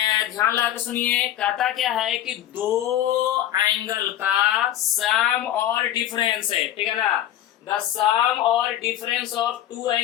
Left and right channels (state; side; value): quieter; right; 12.1 dB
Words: लगा के सुनिए, कहता क्या है कि दो एंगल का सम और डिफरेंस है, ठीक है ना। द सम और difference of two